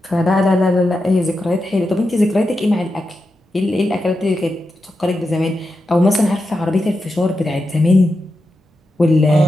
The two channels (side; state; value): both; normal; correlation 0.88